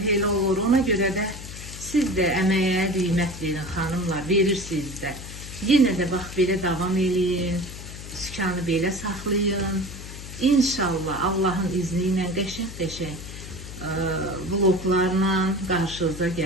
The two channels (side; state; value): left; noise; hum, 12 dB below the sound